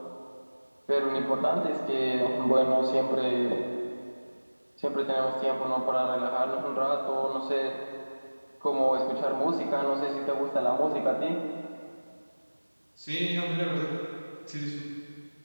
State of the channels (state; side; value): inverted; both; correlation -1.00